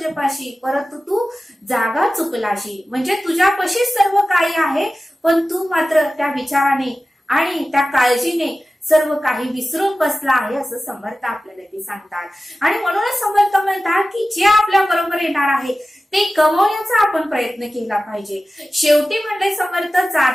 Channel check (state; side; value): normal; both; correlation 0.95